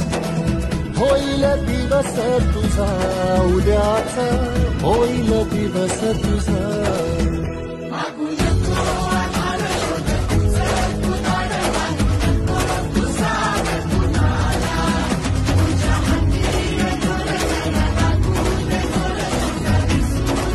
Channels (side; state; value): both; identical; correlation 1.00